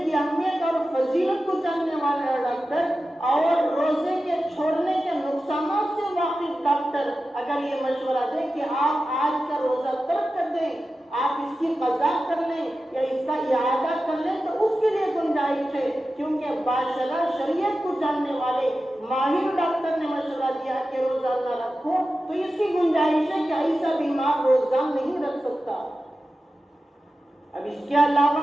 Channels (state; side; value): normal; both; correlation 0.93